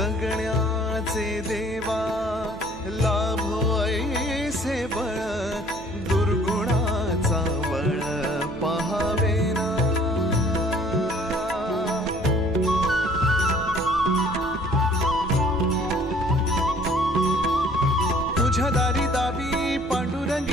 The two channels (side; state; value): right; noise; hum, 15 dB below the sound